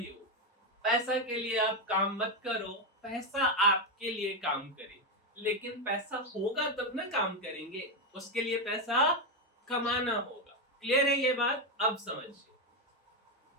पैसा के लिए आप काम मत करो, पैसा आपके लिए काम करे। लेकिन पैसा होगा तब ना काम करेंगे, उसके लिए पैसा कमाना होगा। क्लियर है ये बात? अब समझिए,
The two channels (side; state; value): both; normal; correlation 0.07